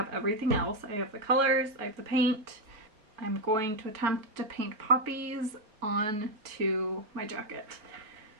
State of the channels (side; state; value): left; late; 4.4 ms